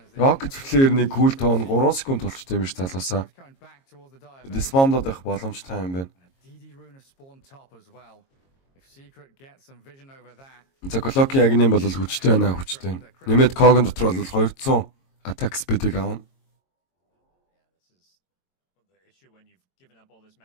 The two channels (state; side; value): late; right; 22 ms